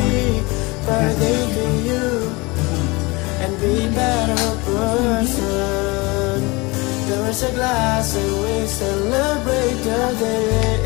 birthday to you, and be better person. There is a glass and we celebrate the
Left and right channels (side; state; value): right; quieter; 25.0 dB